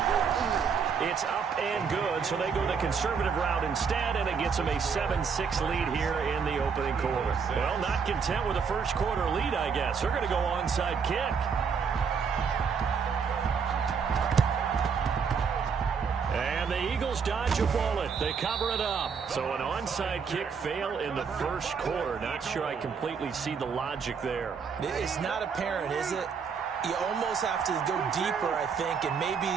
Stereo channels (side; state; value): left; quieter; 6.0 dB